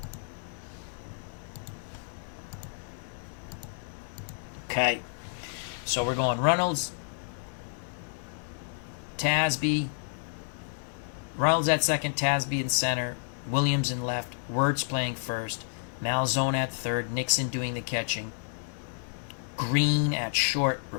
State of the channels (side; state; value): right; silent; digital silence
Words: Okay. So we're going Reynolds, Tasby, Reynolds at second, Tasby in center, Williams in left, Wirtz playing first, Malzone at third, Nixon doing the catching, Green at short,